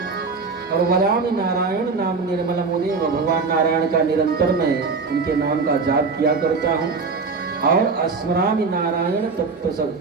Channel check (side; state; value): left; quieter; 4.6 dB